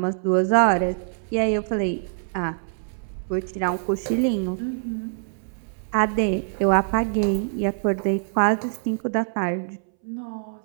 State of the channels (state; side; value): silent; left; 62 dB below the other